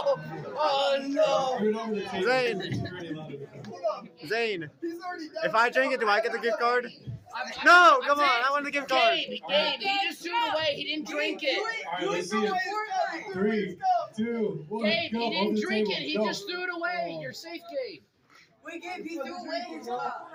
Oh no! Throw it over the table. Zane. You're already allowed to become. Zane. He's already done. If I drink it, do I get the gift card? No, come on. I want the gift card. Gabe, he just threw it away. He didn't drink it. All right, let's see it. 3, 2, 1, Gabe, go. he Over didn't the drink table. it. He Go. just threw it away. You're safe, Gabe. We gave you the away as well.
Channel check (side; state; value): both; identical; correlation 1.00